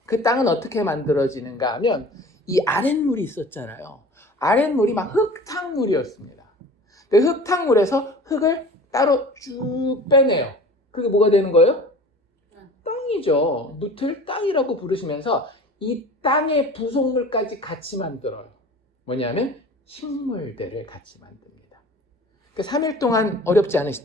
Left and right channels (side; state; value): both; normal; correlation 0.41